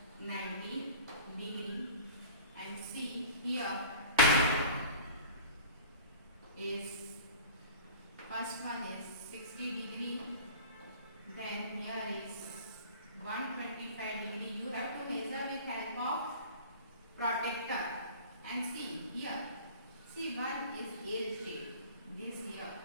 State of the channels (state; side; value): inverted; both; correlation -0.41